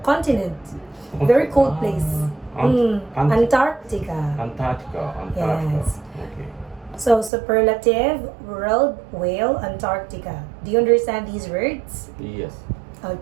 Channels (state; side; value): drops out; left; at 7.3 s